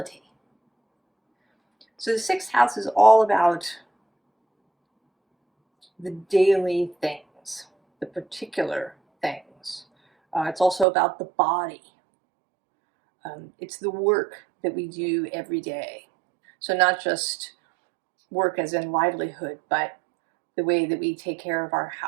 So the sixth house is all about the daily things, the particular things. It's also about the body. It's the work that we do every day. So not just work as in livelihood, but the way that we take care of our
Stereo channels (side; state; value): left; drops out; at 10.9 s